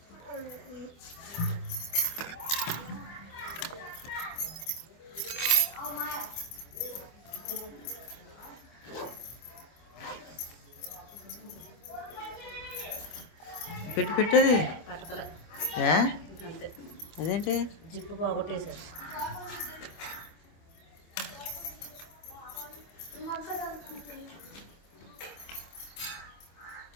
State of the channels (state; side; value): late; right; 25 ms